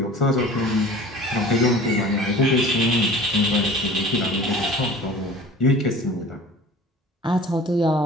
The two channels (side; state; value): both; normal; correlation 0.42